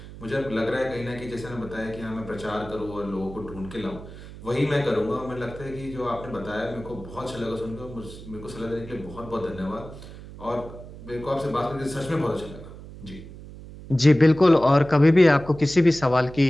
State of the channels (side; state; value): right; noise; hum, 15 dB below the sound